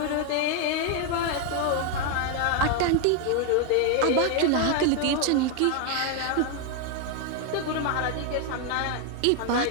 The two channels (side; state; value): both; different; correlation 0.01